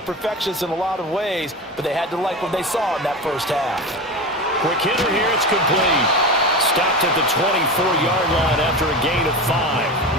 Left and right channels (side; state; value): both; normal; correlation 0.25